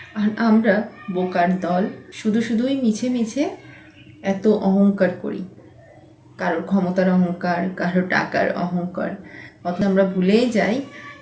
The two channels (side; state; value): both; identical; correlation 1.00